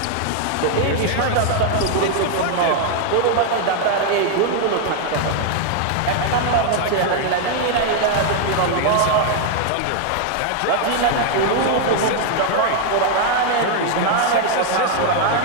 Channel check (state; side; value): different; both; correlation 0.00